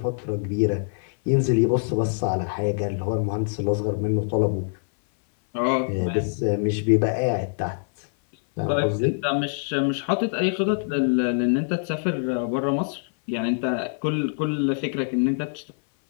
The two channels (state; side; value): silent; right; 59 dB below the other